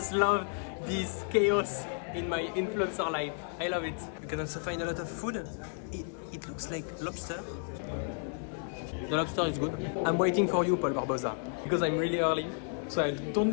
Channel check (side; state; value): right; silent; 56 dB below the other